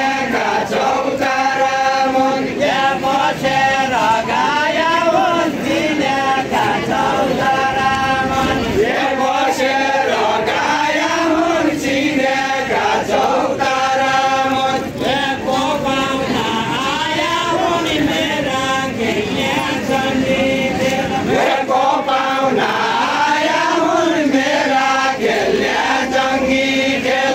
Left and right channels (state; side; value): identical; both; correlation 1.00